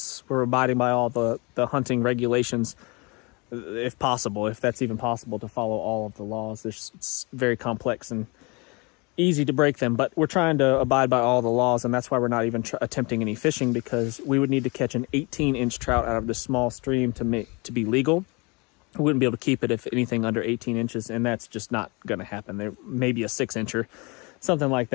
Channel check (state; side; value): quieter; right; 28.2 dB